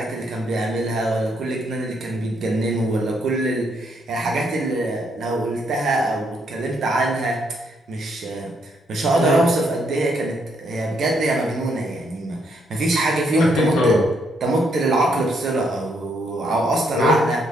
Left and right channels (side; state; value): both; normal; correlation 0.74